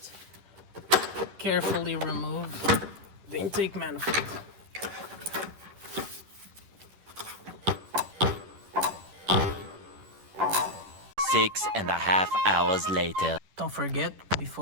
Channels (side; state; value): left; late; 10 ms